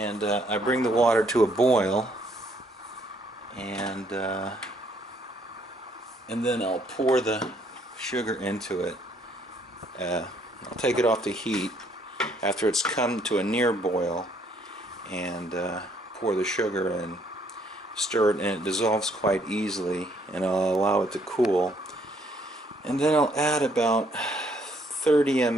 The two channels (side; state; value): both; normal; correlation 0.67